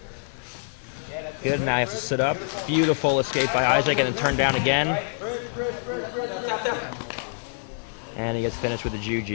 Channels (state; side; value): silent; right; digital silence